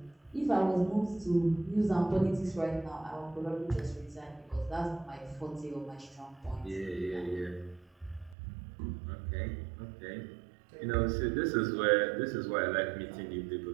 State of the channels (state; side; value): drops out; left; at 8.3 s